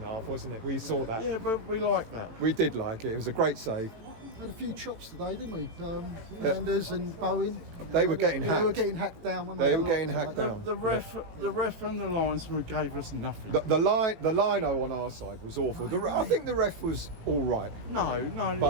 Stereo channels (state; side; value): late; left; 18 ms